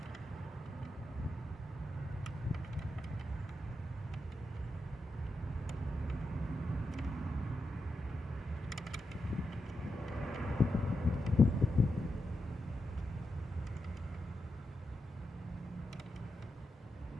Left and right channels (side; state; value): both; normal; correlation 0.87